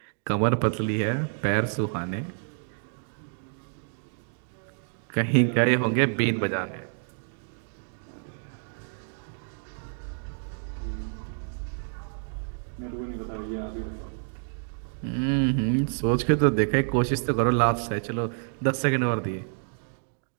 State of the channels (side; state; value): left; silent; 59 dB below the other